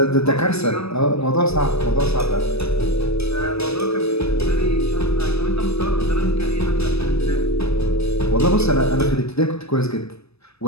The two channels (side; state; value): right; late; 0.78 ms